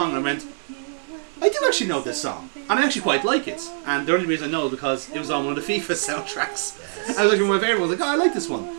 and I went, I do actually know this song, and I actually quite like it. And the only reason I know is because it was on one of the FIFA soundtracks. I was like, my favourite one. I was like, oh, I like this one.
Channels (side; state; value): left; silent; 63 dB below the other